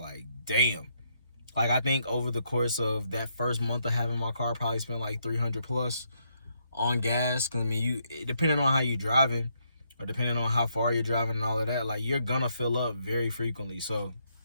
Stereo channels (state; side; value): inverted; both; correlation -0.76